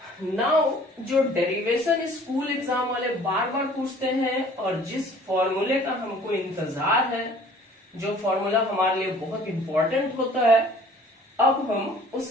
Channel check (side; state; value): both; normal; correlation 0.52